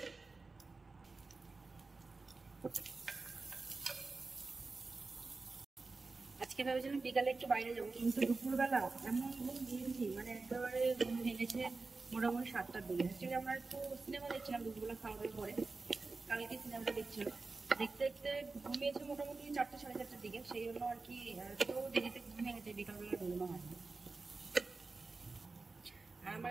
আজকে ভেবেছিলাম বিকালে একটু বাইরে যাবো, কিন্তু দুপুরবেলা এমন ঘুম দিয়েছি, মানে একেবারে ঘুম ভেঙেছে মোটামুটি 7টার দিকে। অ্যাকচুয়ালি আমরা একটু সিনেমা দেখছিলাম দুপুরবেলা খাওয়া দাওয়ার পরে, কালকে সিনেমাটা দেখছিলাম, দেখতে দেখতে ঘুমিয়েছে মোটামুটি 4টে সাড়ে 4টার দিকে। সেই জন্য আর কি একটু দেরিতে ঘুমিয়ে গেছে, বিকালবেলা ঘুমানো হয়নি। আর আমার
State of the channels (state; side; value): quieter; left; 3.8 dB